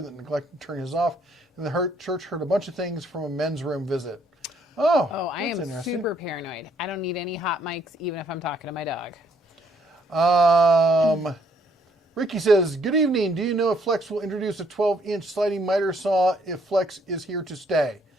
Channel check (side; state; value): both; normal; correlation 0.68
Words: that neglected to turn his off, and the church heard a bunch of things from a men's room visit. Oh, I am super paranoid. I don't need any hot mics, even if I'm talking to my dog. Ricky says, good evening. Do you know if Flex will introduce a 12-inch sliding miter saw if Flex is here to stay?